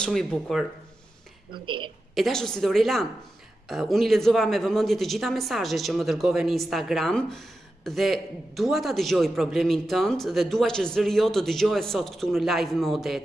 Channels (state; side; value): normal; both; correlation 0.91